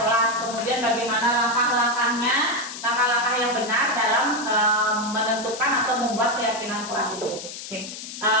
kemudian bagaimana langkah-langkahnya, langkah-langkah yang benar dalam menentukan atau membuat keyakinan kelas itu. Oke.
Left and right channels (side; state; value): left; noise; hiss, 10 dB below the sound